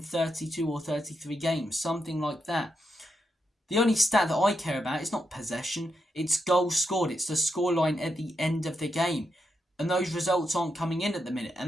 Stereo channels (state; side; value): normal; both; correlation 0.84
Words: or 33 games. Something like that. The only stat that I care about is not possession. It's goals scored. It's the scoreline at the end of the game. And those results aren't coming in at the minute.